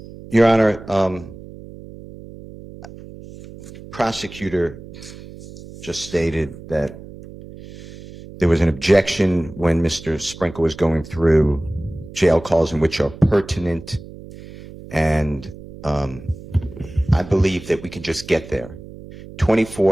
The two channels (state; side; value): noise; right; hum, 16 dB below the sound